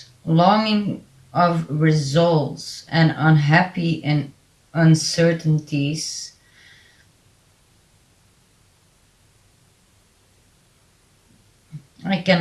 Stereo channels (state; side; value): identical; both; correlation 1.00